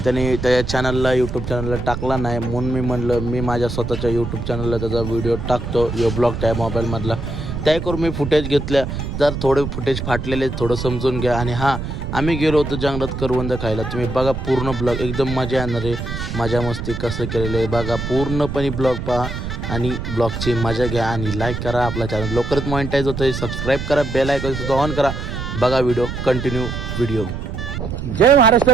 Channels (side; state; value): right; noise; rumble, 5 dB below the sound